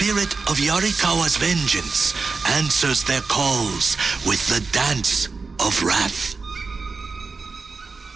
of Yarikawa's vengeance answers their calls with the Dance of Wrath.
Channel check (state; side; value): quieter; left; 4.4 dB